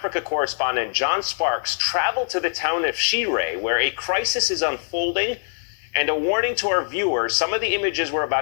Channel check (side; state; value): right; silent; 63 dB below the other